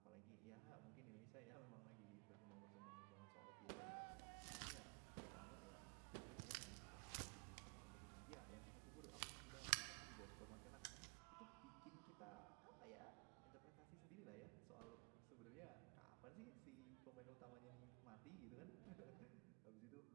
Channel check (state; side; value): quieter; left; 32.8 dB